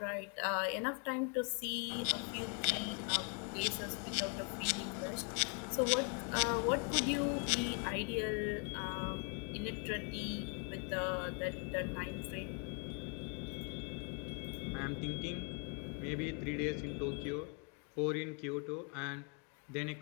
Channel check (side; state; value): right; quieter; 38.8 dB